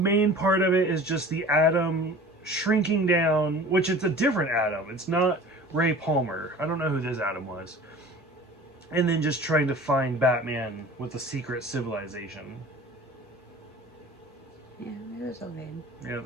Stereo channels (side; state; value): both; normal; correlation 0.42